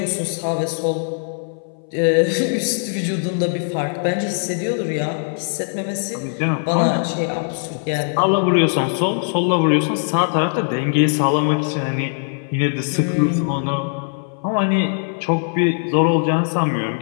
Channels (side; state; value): right; silent; 61 dB below the other